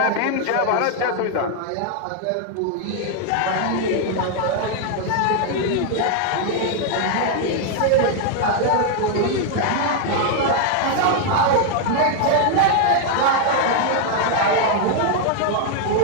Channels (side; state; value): both; different; correlation 0.00